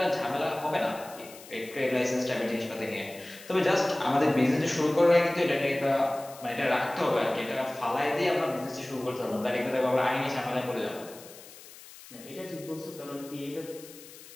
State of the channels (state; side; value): noise; left; hiss, 18 dB below the sound